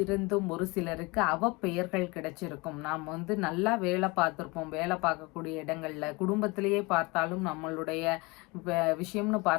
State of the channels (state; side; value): quieter; right; 25.6 dB